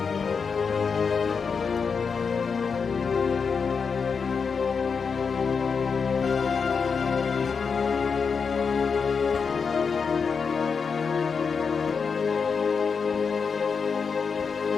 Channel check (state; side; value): quieter; right; 5.6 dB